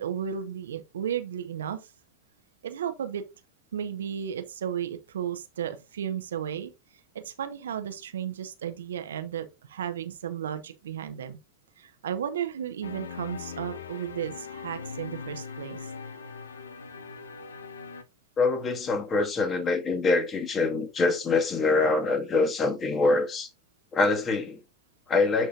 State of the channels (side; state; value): both; normal; correlation 0.37